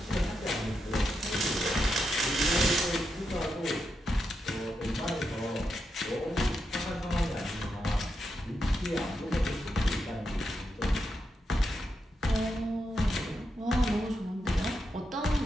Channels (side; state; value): both; normal; correlation 0.85